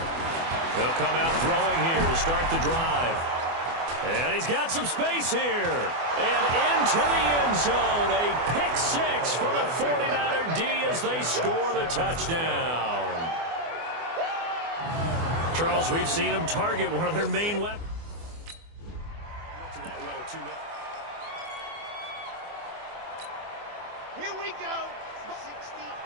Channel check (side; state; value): left; late; 24 ms